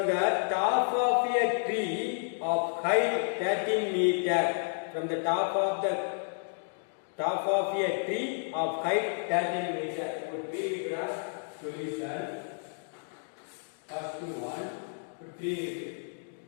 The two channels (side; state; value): right; silent; digital silence